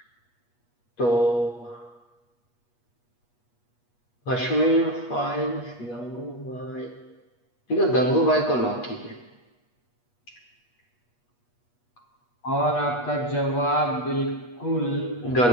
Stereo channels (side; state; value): right; late; 8.3 ms